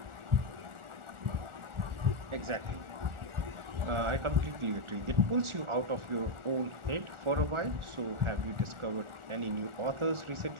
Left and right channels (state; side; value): late; left; 1.4 ms